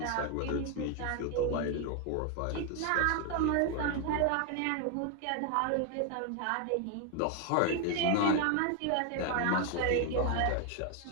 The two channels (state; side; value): different; both; correlation 0.01